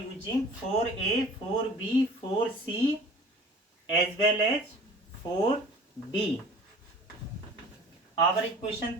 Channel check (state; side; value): normal; both; correlation 0.45